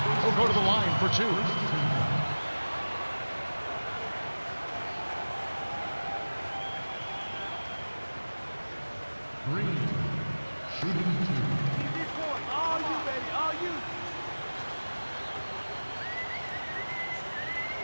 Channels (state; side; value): inverted; both; correlation -1.00